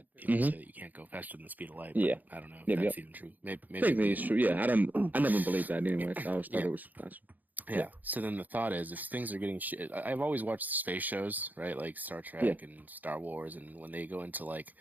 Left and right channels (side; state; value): left; late; 0.083 ms